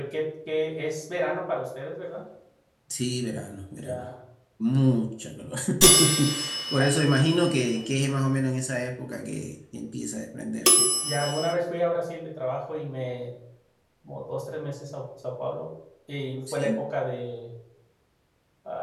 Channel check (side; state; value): both; identical; correlation 1.00